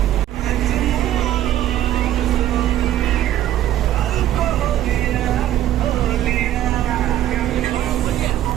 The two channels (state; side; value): quieter; left; 12.6 dB